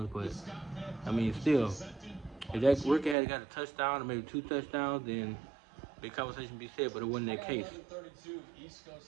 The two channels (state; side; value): drops out; left; at 3.2 s